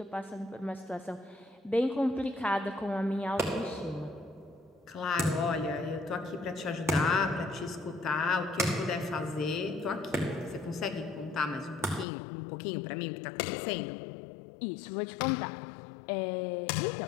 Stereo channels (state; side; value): drops out; right; at 12.1 s